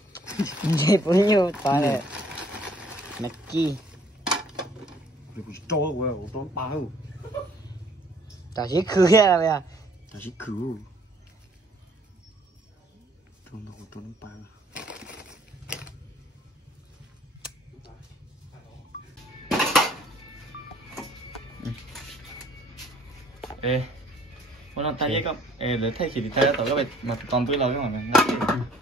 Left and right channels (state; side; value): normal; both; correlation 0.59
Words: Chị cũng như ta này. Nè chi. Rồi cho của tôi bao. Ta chỉ khử ra bây giờ. Ta chỉ khử. Tôi bao. Ê, muốn làm tay với con. Ê, để thay thì tay tao các bạn mà còn với lâu cái mà